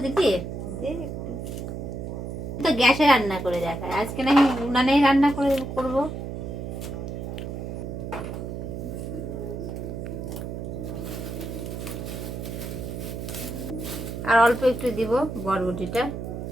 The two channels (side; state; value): right; noise; hum, 6 dB below the sound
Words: দিদি? তো গ্যাসে রান্না করে দেখায়, আজকে না উনানেই রান্না করে করবো। আর অল্প একটু দিব বরবটিটা।